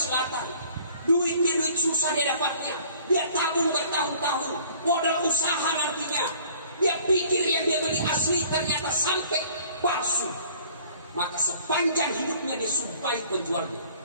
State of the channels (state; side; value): inverted; both; correlation -0.54